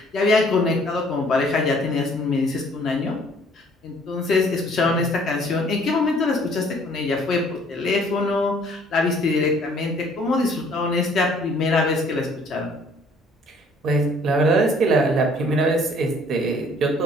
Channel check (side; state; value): both; normal; correlation 0.58